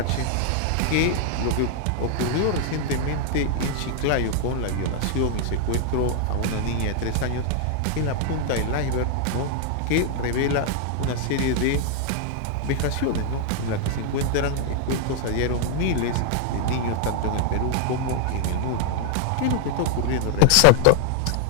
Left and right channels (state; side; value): different; both; correlation 0.00